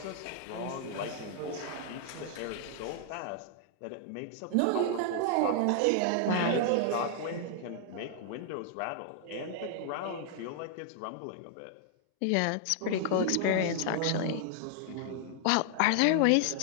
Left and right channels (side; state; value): both; different; correlation 0.00